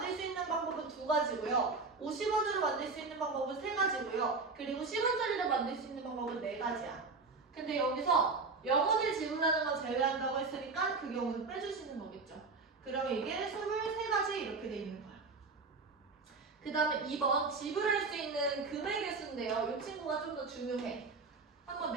수 있는 방법은 2가지고요. 50원으로 만들 수 있는 방법은 3가지고요. 그리고 10원짜리로 만들 수 있는 방법은 4가지야. 근데 여기서 0원을 지불하는 건 제외한다고 했으니까 그 경우는 빼주시는 거겠죠. 그러면 이게 23가지 이렇게 돼 있는 거야. 그 다음에 2번 지불할 수 있는 금액의 수인데요. 이 친구가 좀 더 중요해. 한번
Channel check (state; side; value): quieter; left; 4.1 dB